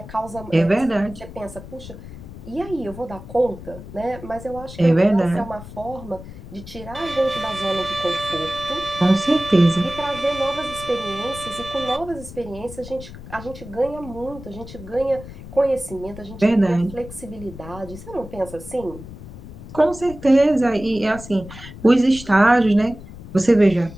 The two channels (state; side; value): noise; left; rumble, 14 dB below the sound